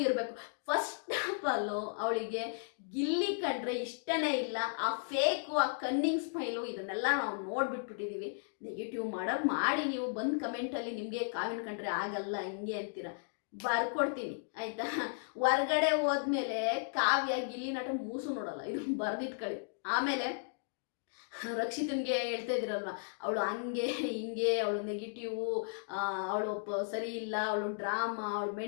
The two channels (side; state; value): right; silent; digital silence